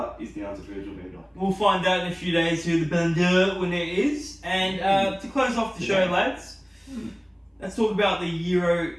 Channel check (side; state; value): both; identical; correlation 1.00